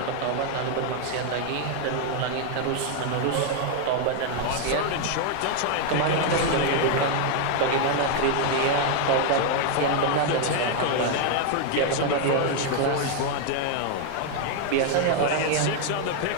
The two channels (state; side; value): different; both; correlation 0.00